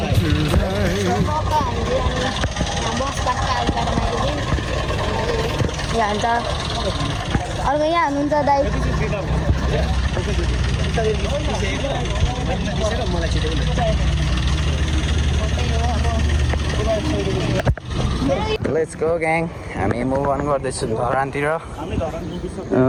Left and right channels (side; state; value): both; identical; correlation 1.00